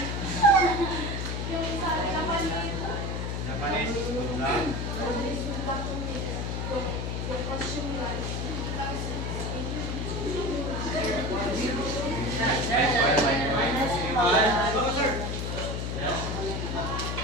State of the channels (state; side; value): noise; left; hum, 2 dB below the sound